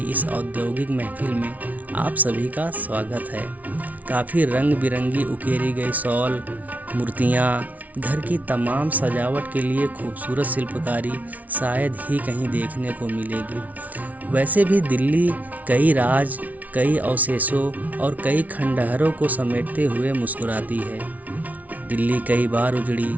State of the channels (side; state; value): left; late; 0.073 ms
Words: इस औद्योगिक महफिल में आप सभी का स्वागत है। काफ़ी रंग बिरंगी उकेरी गई शॉल, मूर्तियाँ, घर की तमाम सजावट के लिए खूबसूरत शिल्पकारी शायद ही कहीं देखने को मिलेगी। वैसे भी दिल्ली कई राज, कई अवशेषों और कई खंडहरों को समेटते हुए मुस्कुराती है। दिल्ली कई बार उजड़ी,